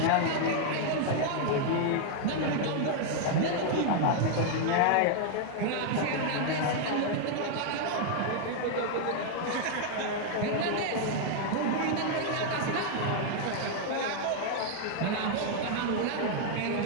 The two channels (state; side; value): different; both; correlation 0.00